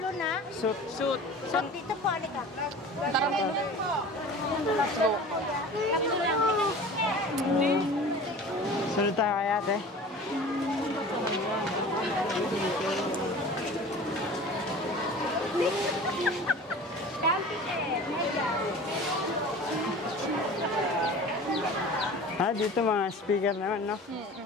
na. Suit. Suit. Suit dito po, alika. Tara po. Sunod tayo kay ate. Dito mga speaker naman, no?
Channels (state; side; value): normal; both; correlation 0.40